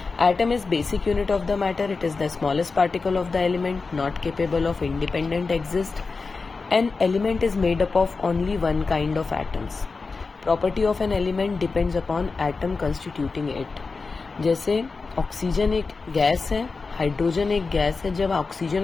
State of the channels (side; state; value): right; quieter; 4.3 dB